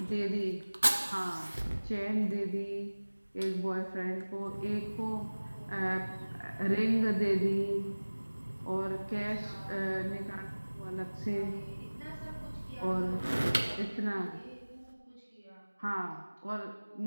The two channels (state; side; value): inverted; both; correlation -1.00